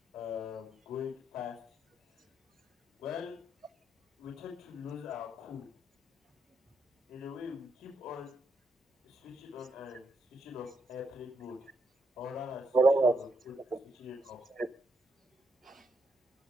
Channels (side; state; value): both; normal; correlation 0.78